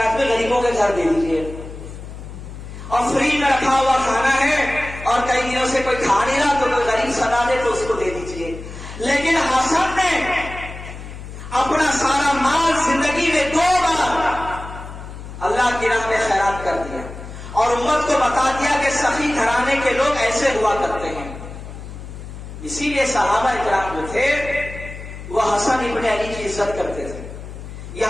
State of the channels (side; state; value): left; noise; hum, 12 dB below the sound